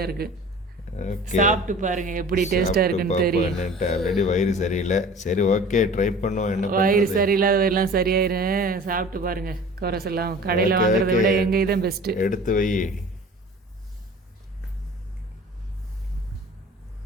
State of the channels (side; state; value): both; normal; correlation 0.43